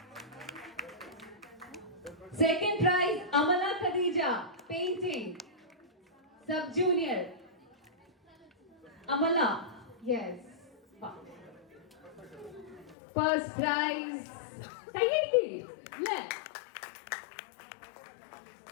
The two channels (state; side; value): drops out; right; at 13.0 s